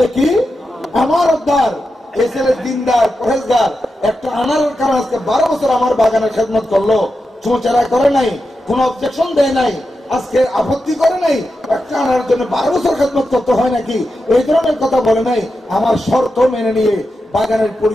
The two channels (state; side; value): normal; both; correlation 0.89